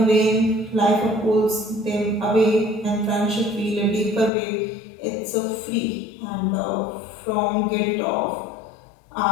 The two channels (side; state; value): right; drops out; at 4.3 s